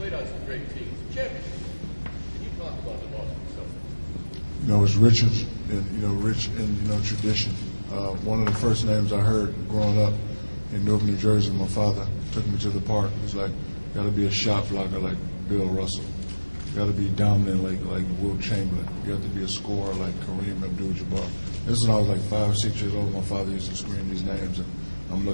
played on some great teams. Championships. Can you talk about the Boston Celtics? It's rich in tradition. One of the first names I heard growing up in Newark, New Jersey, my father took me to the park. He was like, got to be a shot blocker like Bill Russell. You got to be dominant like Wilt Chamberlain. You have to be a scorer like Kareem Abdul-Jabbar. This is when I was like 5 or 6 years old. My father used to scream these names, and I'm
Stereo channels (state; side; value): inverted; both; correlation -1.00